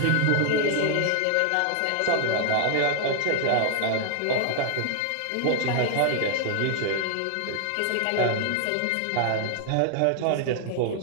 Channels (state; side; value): different; both; correlation 0.00